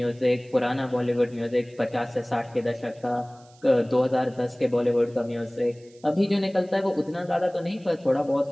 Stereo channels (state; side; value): noise; right; hiss, 29 dB below the sound